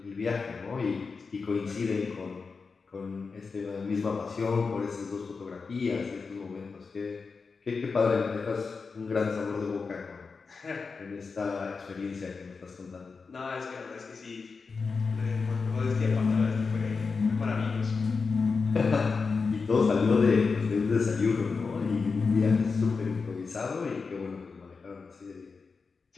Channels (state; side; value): quieter; right; 4.8 dB